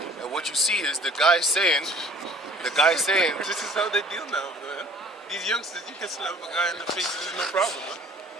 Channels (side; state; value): both; normal; correlation 0.51